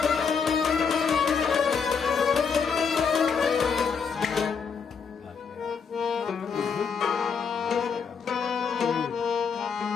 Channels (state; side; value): quieter; right; 6.0 dB